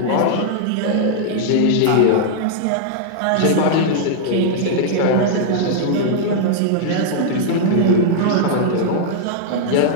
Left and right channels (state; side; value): different; both; correlation -0.01